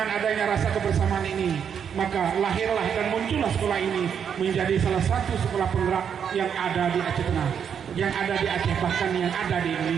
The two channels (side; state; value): left; quieter; 7.7 dB